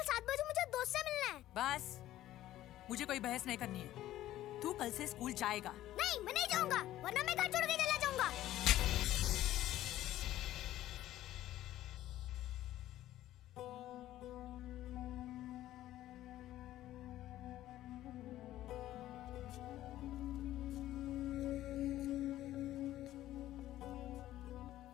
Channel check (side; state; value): right; quieter; 14.1 dB